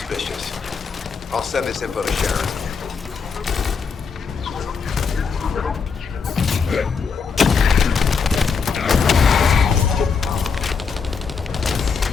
I'll send this info to Sharon.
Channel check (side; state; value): right; quieter; 5.6 dB